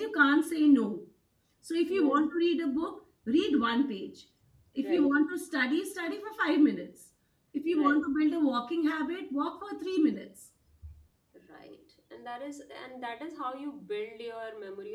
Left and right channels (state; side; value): identical; both; correlation 1.00